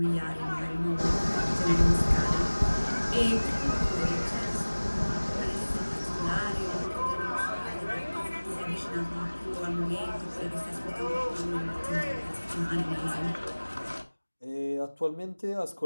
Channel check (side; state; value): both; inverted; correlation -1.00